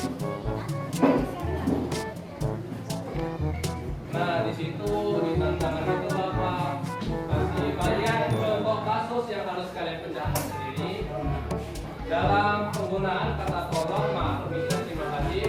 Nah, di situ di tantangan itu Bapak kasih kalian kelompok kasus yang harus kalian pecahkan sendiri dalam penggunaan kata tolong, maaf, permisi, terima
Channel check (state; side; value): identical; both; correlation 1.00